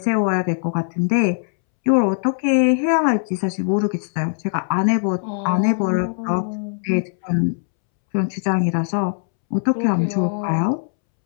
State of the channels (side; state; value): right; silent; 65 dB below the other